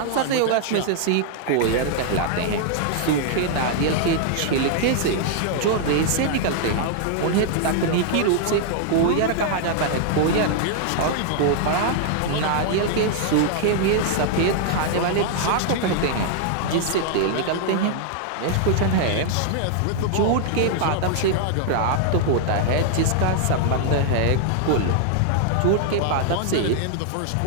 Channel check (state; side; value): different; both; correlation -0.01